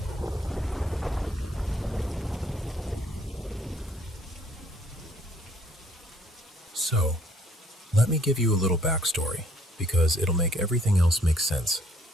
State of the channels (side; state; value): both; normal; correlation 0.63